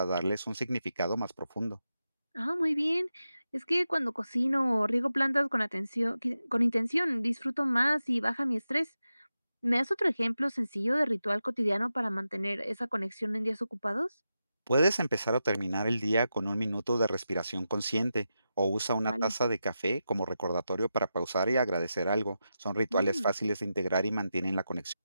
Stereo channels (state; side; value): inverted; both; correlation -0.90